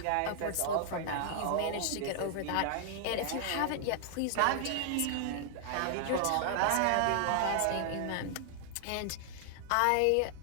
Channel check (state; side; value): different; both; correlation 0.00